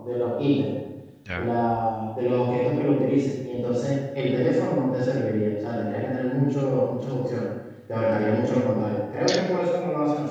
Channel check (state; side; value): identical; both; correlation 1.00